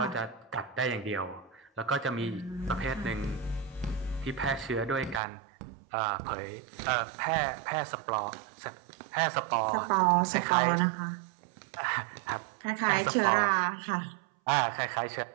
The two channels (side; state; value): left; drops out; at 5.2 s